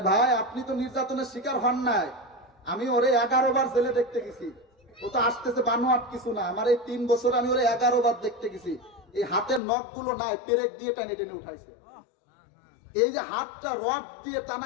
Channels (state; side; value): drops out; right; at 9.6 s